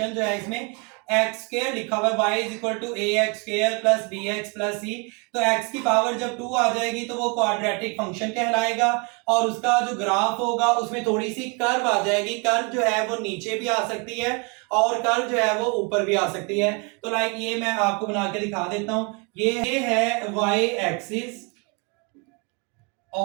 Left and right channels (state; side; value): quieter; left; 32.6 dB